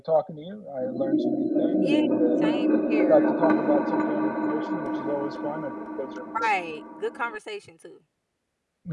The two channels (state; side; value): identical; both; correlation 1.00